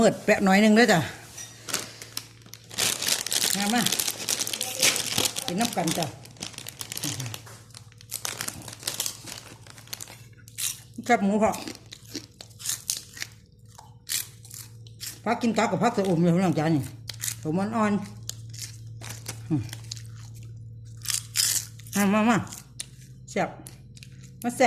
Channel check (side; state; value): both; identical; correlation 1.00